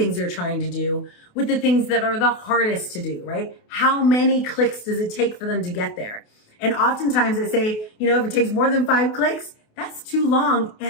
they're trying to do with the things that are the hardest to do, right? How many clicks does it take for them to get there? And oftentimes I say, if it takes more than 5 clicks, that's too long,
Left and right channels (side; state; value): right; late; 28 ms